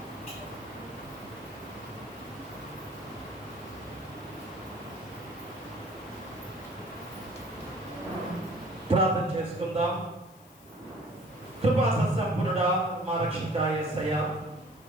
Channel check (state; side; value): noise; left; hiss, 25 dB below the sound